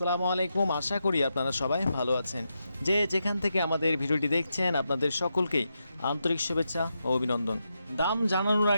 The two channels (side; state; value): both; inverted; correlation -0.85